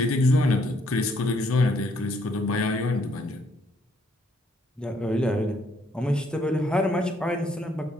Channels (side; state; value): both; normal; correlation 0.69